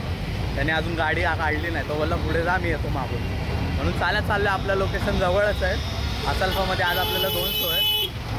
त्याने अजून गाडी काढली नाही. तो बोलला पुढे जा, मी येतो मागून, म्हणून चालत चाललो आहे. आपलं लोकेशन जवळच आहे, असल्फामध्ये. आज आपल्याला 2 शो आहे.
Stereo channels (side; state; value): both; identical; correlation 1.00